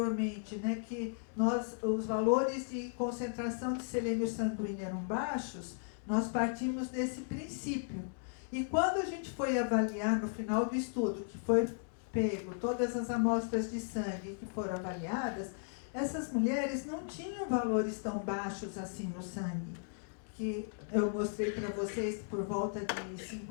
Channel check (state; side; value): silent; right; digital silence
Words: né, que os valores de concentração de selênio sanguíneo eram baixos, nós partimos desse princípio. E quando a gente foi avaliar no final do estudo, que foi pego todas as amostras de sangue que foram avaliadas, essas mulheres não tinham valores tão baixos assim no sangue, que eu mostrei para vocês por volta de